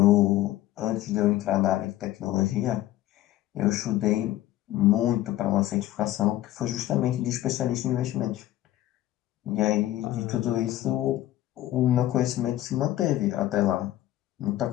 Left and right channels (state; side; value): quieter; right; 14.6 dB